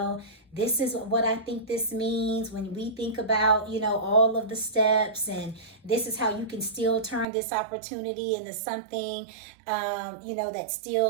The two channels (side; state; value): left; drops out; at 7.2 s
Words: this is what I think this means when we think about, all of the steps, and this is how you can still turn this opportunity into something, that